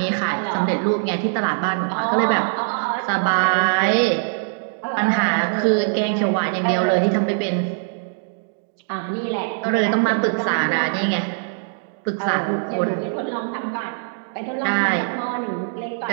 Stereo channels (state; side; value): silent; left; digital silence